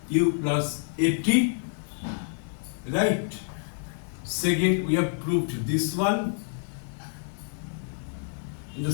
u plus at, right? Second we have proved this one. In the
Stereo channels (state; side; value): silent; right; digital silence